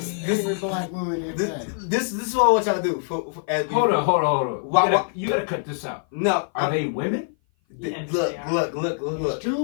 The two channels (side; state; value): right; silent; 56 dB below the other